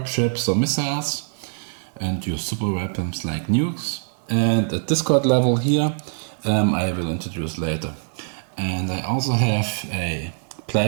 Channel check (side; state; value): left; silent; 63 dB below the other